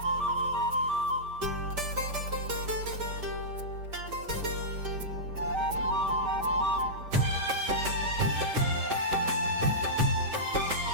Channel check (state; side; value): late; left; 5.1 ms